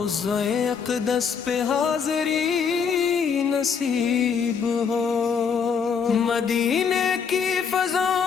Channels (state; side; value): quieter; right; 6.4 dB